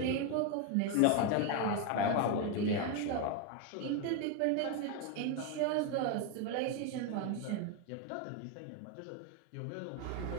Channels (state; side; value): different; both; correlation 0.02